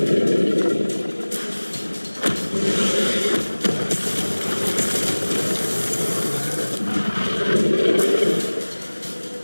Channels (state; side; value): inverted; both; correlation -1.00